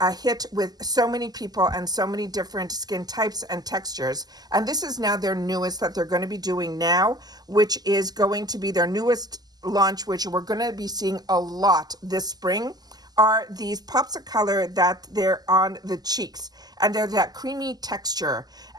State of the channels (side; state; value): left; late; 0.19 ms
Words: hit with so many people and so many different skin types and textures. And this is now their newest that they're going to be doing now, which is going to be their newest launch, which we're going to be seeing a lot this spring, are these pops of color that they're on the cheeks, and they're that creamy texture.